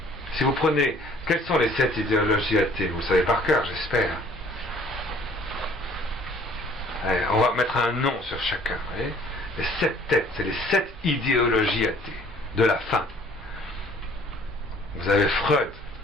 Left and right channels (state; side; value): normal; both; correlation 0.56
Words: Si vous prenez, quelles sont les 7 idéologies athées? Vous le savez par cœur, j'espère. On va mettre un nom sur chacun. Vous voyez, les 7 têtes, c'est les 7 idéologies athées de la fin. Vous avez Freud,